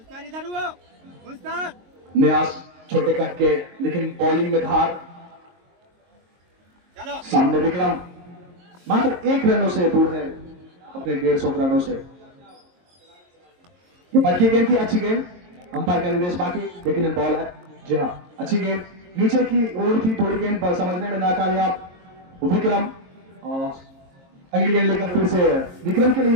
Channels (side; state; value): left; late; 22 ms